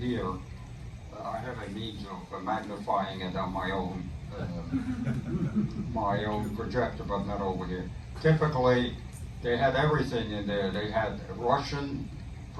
I have a means of magnifying it on my own projector, but not over here. Typically, they had everything in there. They had Russian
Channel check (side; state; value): both; identical; correlation 1.00